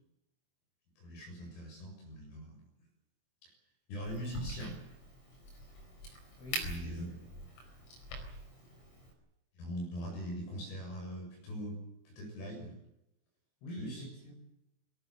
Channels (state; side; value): late; right; 23 ms